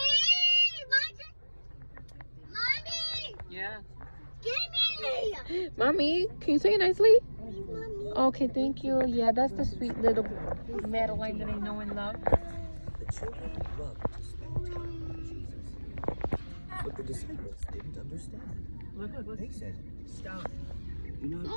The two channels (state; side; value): inverted; both; correlation -1.00